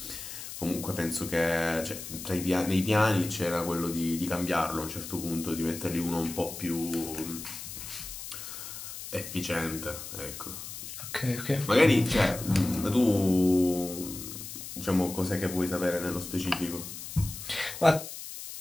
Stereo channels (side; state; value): left; noise; hiss, 10 dB below the sound